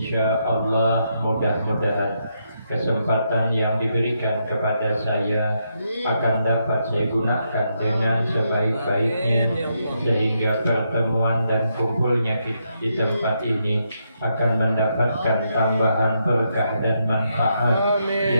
Allah mudah-mudahan kesempatan yang diberikan kepada saya akan dapat saya gunakan dengan sebaik-baiknya, sehingga pertemuan dan kumpulnya di tempat ini akan mendapatkan tambahan berkah dan manfaat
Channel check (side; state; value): both; inverted; correlation -0.80